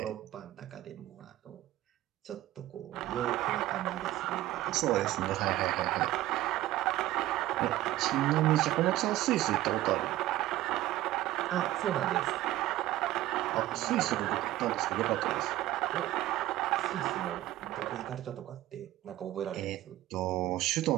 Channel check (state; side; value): quieter; left; 15.3 dB